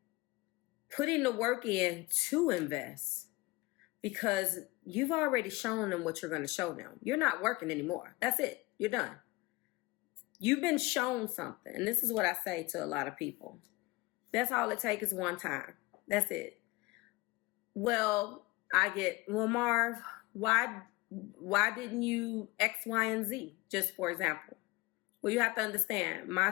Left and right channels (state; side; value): quieter; right; 22.3 dB